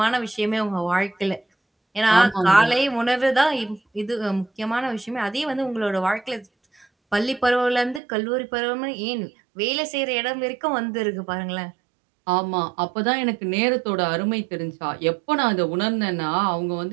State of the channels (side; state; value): left; drops out; at 8.0 s